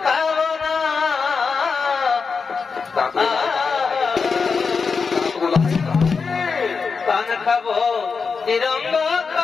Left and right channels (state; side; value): quieter; right; 5.1 dB